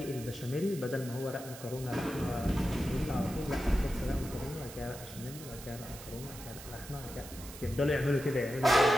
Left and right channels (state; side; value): noise; right; hiss, 14 dB below the sound